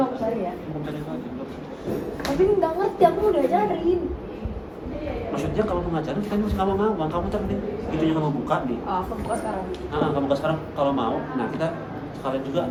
cari ya? Hukum cari itu aja. Tapi nggak ngerti, aku udah ajarin. Maksudnya kalau mau ngajarin kita masih nggak mau ngawang, kamu cari deh itunya kamu buka nih. Oh, aku buka sekarang. Kamu buka sekarang kalau mau, nah kita sekalian juga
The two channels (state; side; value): identical; both; correlation 1.00